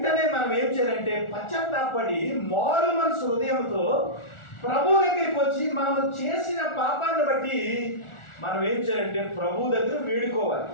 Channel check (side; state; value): right; late; 1.4 ms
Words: మనం ఏం చేయాలంటే పశ్చాత్తాపడి మారు మనసు హృదయంతో ప్రభు దగ్గరికి వచ్చి మనం చేసిన పాపాన్ని బట్టి మనం ఏం చేయాలంటే ప్రభు దగ్గర వేడుకోవాలి.